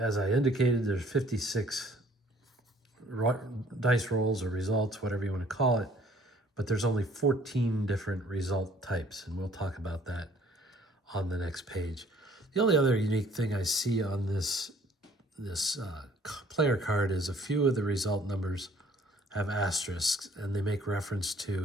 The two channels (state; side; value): normal; both; correlation 0.57